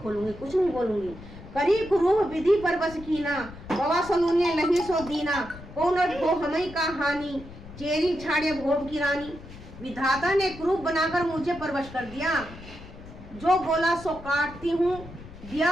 कुछ नहीं बोलूंगी। करी कुरूह विधि पर बस कीना बवा सलूने लही सो दीना कौन को हमें का हानि चेरी छाड़े भोग की रानी। विधाता ने क्रूप बनाकर मुझे परवश कर दिया, जो बोला सो काटती हूँ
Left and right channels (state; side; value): noise; left; rumble, 16 dB below the sound